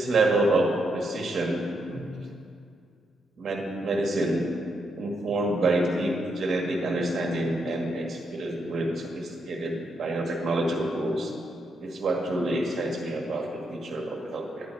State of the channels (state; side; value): normal; both; correlation 0.80